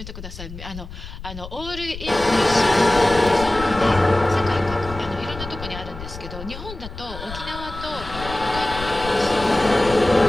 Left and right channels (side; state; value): left; noise; rumble, 12 dB below the sound